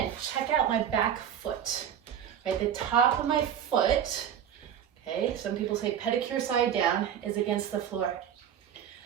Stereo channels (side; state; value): left; quieter; 9.2 dB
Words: check out my back foot. Right, the top of my foot, okay, some people say pedicure side down, is against the floor.